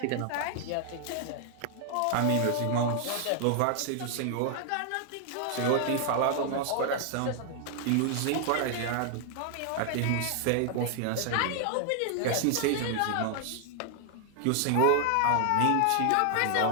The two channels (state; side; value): different; both; correlation 0.00